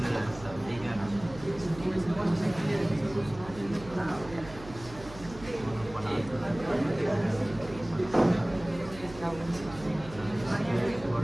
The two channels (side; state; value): right; noise; hum, 16 dB below the sound